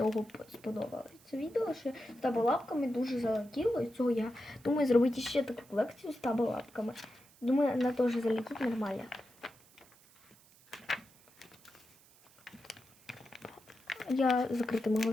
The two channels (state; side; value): noise; right; hiss, 27 dB below the sound